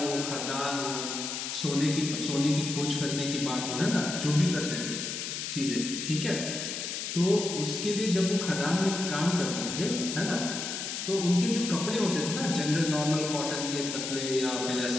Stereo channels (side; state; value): left; noise; hiss, 4 dB below the sound